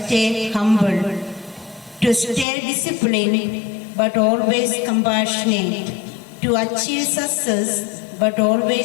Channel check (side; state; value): right; drops out; at 2.5 s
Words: humble, to stay disciplined but always compassionate, to achieve success but